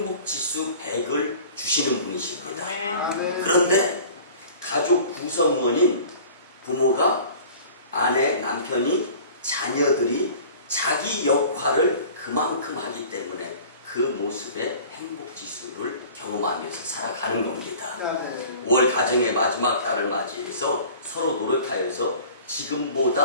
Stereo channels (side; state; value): both; inverted; correlation -0.45